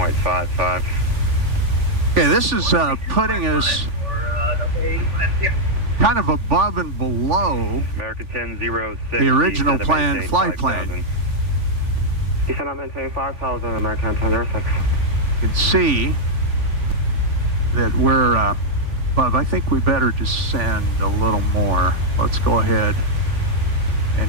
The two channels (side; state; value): left; late; 3.5 ms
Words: Okay, this is putting us kind of above and below American 1006, the original plan flight plan. Descend and maintain 5,000, American 1006. You can see that we're above. I think we better descend a little more. Let's go ahead